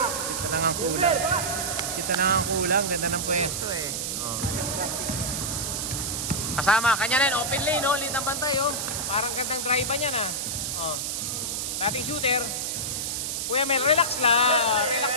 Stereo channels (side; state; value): right; noise; hiss, 2 dB below the sound